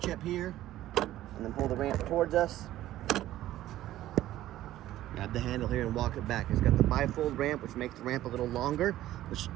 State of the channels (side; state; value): left; quieter; 14.2 dB